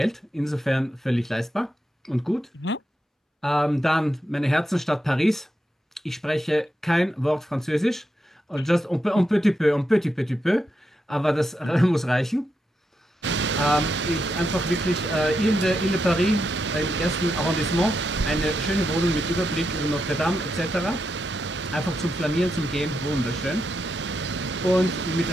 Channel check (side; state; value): both; normal; correlation 0.85